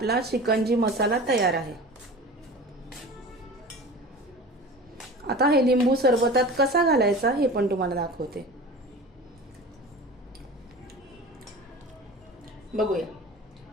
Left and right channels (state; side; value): normal; both; correlation 0.36